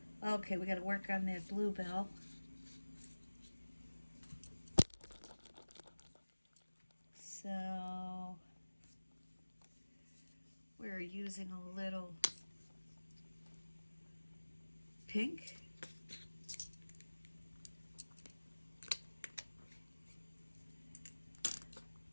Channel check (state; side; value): inverted; both; correlation -1.00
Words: Okay, we got to work on that bluebell. So we're using a little pink.